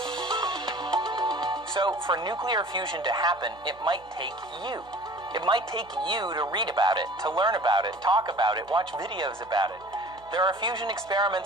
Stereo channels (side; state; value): right; noise; hum, 26 dB below the sound